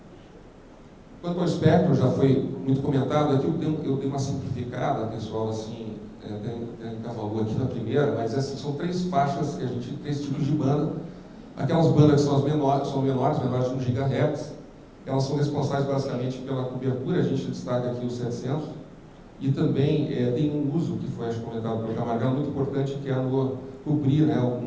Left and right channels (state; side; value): identical; both; correlation 1.00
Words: Quanto ao espectro, já foi muito comentado, aqui eu dei uma simplificada, pessoal, assim, até encavalou aqui na primeira, mas assim, são 3 faixas, que a gente, 3 tipos de banda. Aquelas bandas que são as menores, menores de 1 GHz, elas são responsáveis basicamente pela cobertura, a gente destaca aqui os 700, e também tem um uso, que foi comentado pelo Camargo, muito importante, que é no cobrir, né,